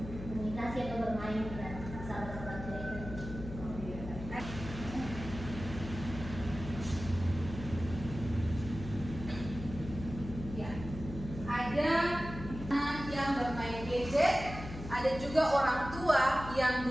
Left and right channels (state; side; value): noise; left; hum, 10 dB below the sound